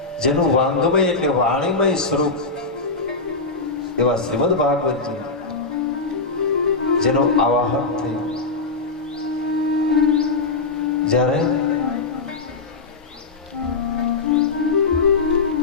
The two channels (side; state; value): right; quieter; 3.9 dB